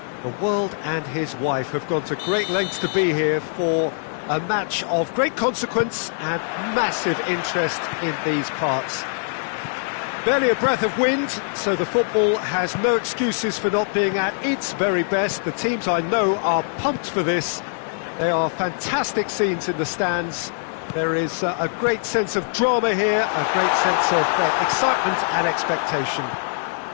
The world and his wife have gone to great lengths to be here for a match of great consequence and massive interest in these parts. Barely a breath of wind, so the football has no excuses for not being at its very best. The teams I know are pumped for this. They are fantastic scenes in the stands. There is a great sense of drama here, a great sense of excitement and expectation.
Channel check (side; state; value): right; silent; digital silence